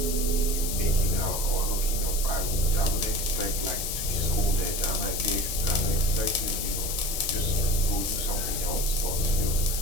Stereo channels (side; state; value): left; noise; hiss, 3 dB below the sound